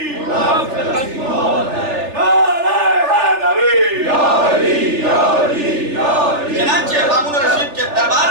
چنانچہ مامون الرشید کے دربار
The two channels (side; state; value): left; late; 3.4 ms